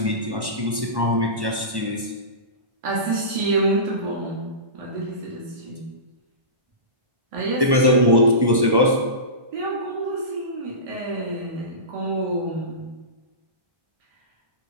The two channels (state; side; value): late; left; 1.1 ms